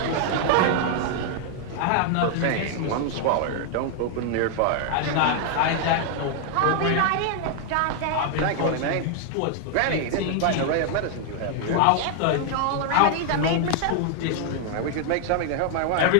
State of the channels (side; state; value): both; different; correlation 0.00